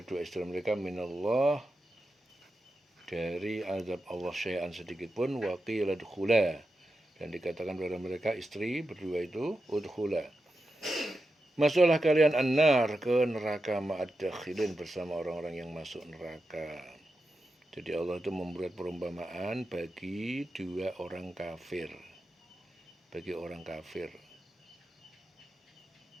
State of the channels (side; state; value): both; normal; correlation 0.89